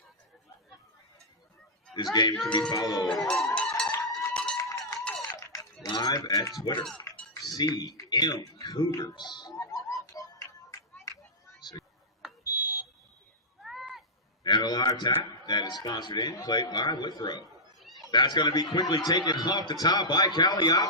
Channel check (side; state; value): both; normal; correlation -0.11